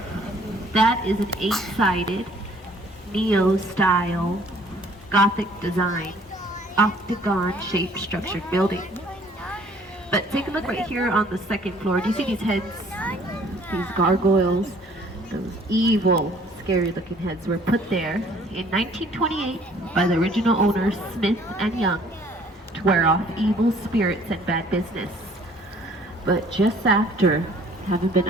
That is an 8-sided, neo-style, Gothic design, octagon-shaped structured building. But take a look right here on the 2nd floor. Do you see these heads? These gargoyles, those evil, scary-looking heads were put there in 1928 by the original owners Smith and Young to wear off evil spirits and bad business. But just after having been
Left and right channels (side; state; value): both; normal; correlation 0.57